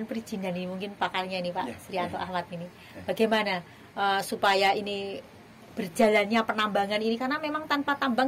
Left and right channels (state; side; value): identical; both; correlation 1.00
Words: perizinan ini mungkin pakarnya ini Pak Srianto Ahmad ini, bagaimana supaya ini berjalannya penambangan ini, karena memang tanpa tambang